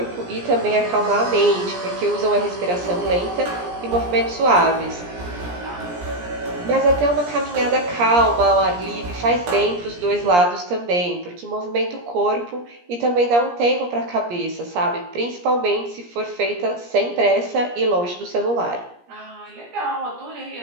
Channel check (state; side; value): late; left; 17 ms